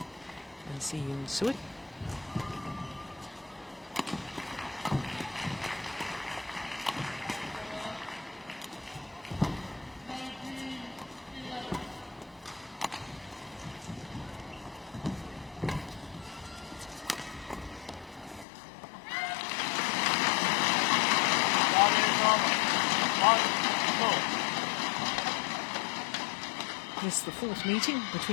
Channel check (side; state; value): right; drops out; at 18.4 s